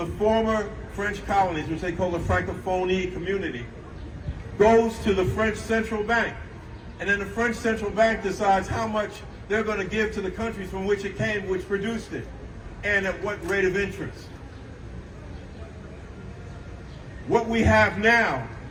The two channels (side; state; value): both; identical; correlation 1.00